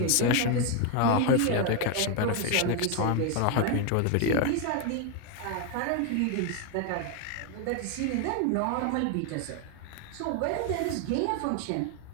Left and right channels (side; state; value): both; different; correlation 0.01